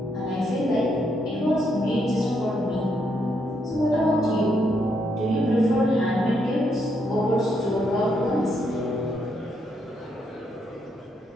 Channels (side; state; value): both; normal; correlation 0.77